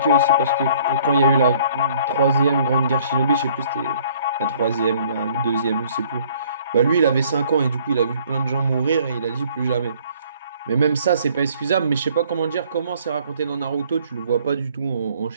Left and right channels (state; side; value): inverted; both; correlation -0.58